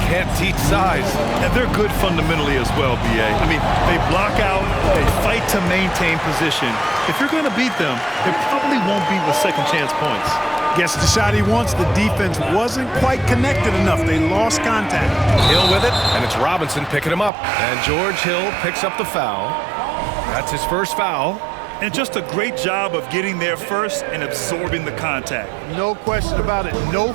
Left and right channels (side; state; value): left; drops out; at 17.3 s